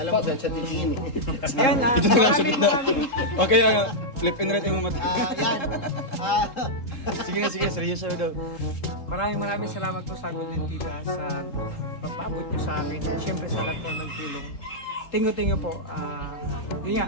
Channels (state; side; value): late; right; 3.8 ms